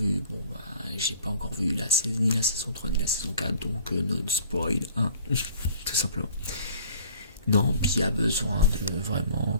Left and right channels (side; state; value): both; inverted; correlation -0.50